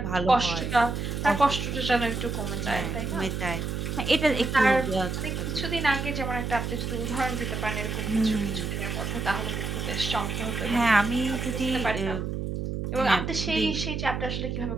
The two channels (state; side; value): noise; right; hum, 3 dB below the sound